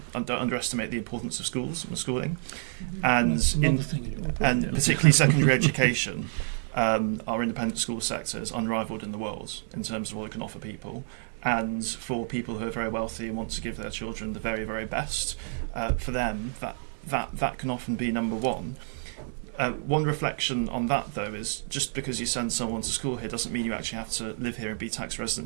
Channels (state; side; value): silent; left; digital silence